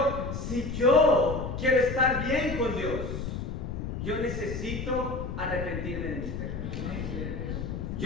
si yo quiero estar bien con Dios, yo necesito arrepentirme de mis pecados.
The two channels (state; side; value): noise; left; rumble, 5 dB below the sound